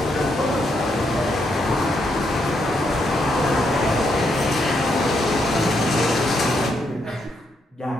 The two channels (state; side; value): normal; both; correlation 0.78